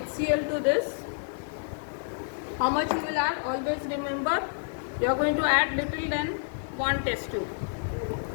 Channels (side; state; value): right; silent; 59 dB below the other